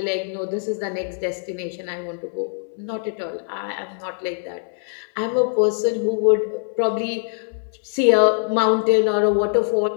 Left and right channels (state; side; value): silent; right; digital silence